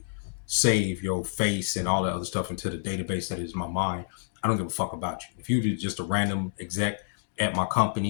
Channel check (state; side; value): silent; right; digital silence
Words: save your face and all that other stuff into the database that is my mind. I don't give a fuck about you. If you're just a random exec at my